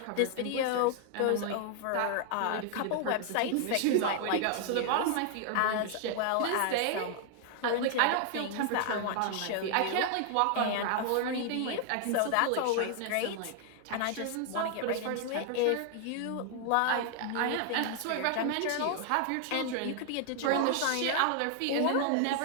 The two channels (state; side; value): different; both; correlation 0.00